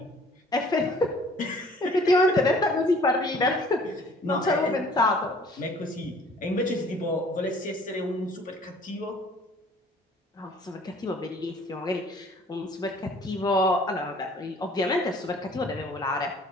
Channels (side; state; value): both; normal; correlation 0.54